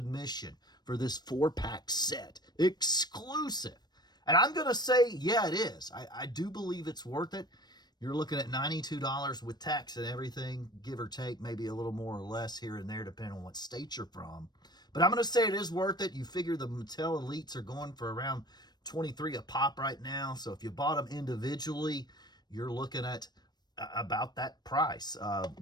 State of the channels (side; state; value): right; late; 0.20 ms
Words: for this 4-pack set? Exclusive. And I'm going to say, yeah, it is. I do believe it's worth it. you're looking at $92 with tax and everything, give or take, maybe a little more or less here and there, depending on what state you're from. But I'm going to say it is worth it. You figure the Mattel Elites are going for around $23 a pop right now. So if you bought them individually, you're looking at about that price